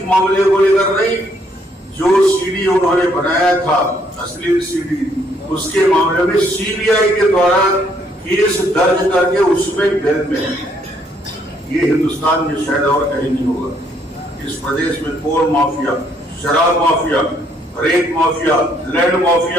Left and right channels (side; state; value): both; normal; correlation 0.69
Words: मामले को लेकर नहीं, जो सीडी उन्होंने बनाया था अश्लील सीडी, उसके मामले में सीबीआई के द्वारा केस दर्ज करके उसमें जेल में है। ये हिंदुस्तान में शायद और कहीं नहीं होगा। इस प्रदेश में कोल माफिया, शराब माफिया, रेत माफिया, लैंड